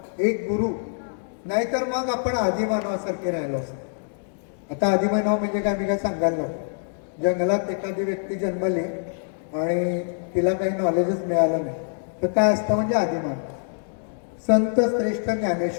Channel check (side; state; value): right; silent; digital silence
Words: एक गुरु, नाहीतर मग आपण आदिमानवासारखे राहिलो असतो. आता आदिमानव म्हणजे काय मी काय सांगायला नको. जंगलात एखादी व्यक्ती जन्मली आणि तिला काही नॉलेजच मिळालं नाही तर काय असतं? म्हणजे आदिमानव. संत श्रेष्ठ